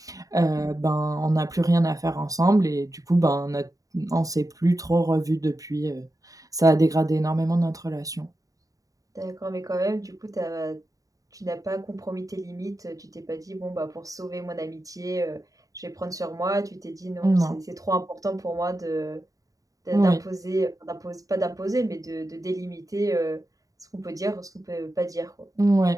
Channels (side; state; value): left; late; 0.17 ms